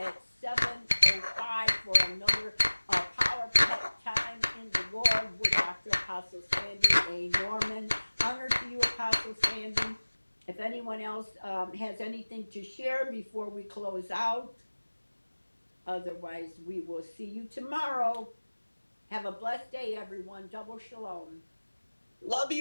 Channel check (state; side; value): inverted; both; correlation -1.00